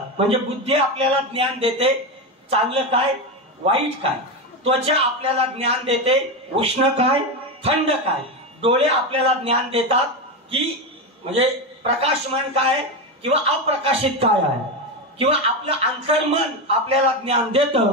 म्हणजे बुद्धी आपल्याला ज्ञान देते चांगलं काय वाईट काय, त्वचा आपल्याला ज्ञान देते उष्ण काय थंड काय, डोळे आपल्याला ज्ञान देतात की म्हणजे प्रकाशमान काय किंवा अप्रकाशित काय आहे, किंवा आपलं अंतर्मन आपल्याला ज्ञान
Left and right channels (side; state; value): both; normal; correlation 0.14